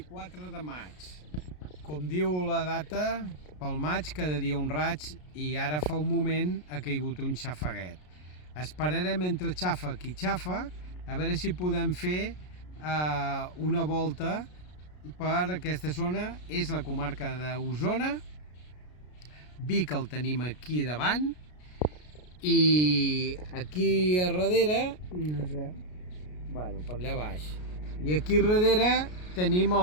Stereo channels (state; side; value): late; right; 33 ms